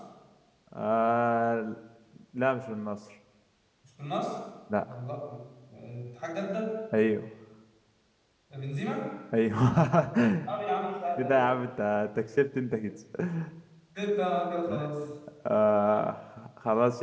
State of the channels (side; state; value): both; identical; correlation 1.00